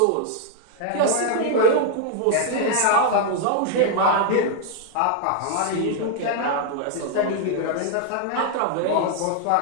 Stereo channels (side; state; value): both; different; correlation 0.00